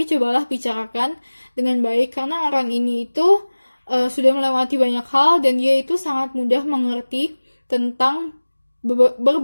cobalah bicarakan dengan baik, karena orang ini itu sudah melewati banyak hal, dan dia itu sangat mudah mengerti tentang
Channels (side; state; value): both; inverted; correlation -1.00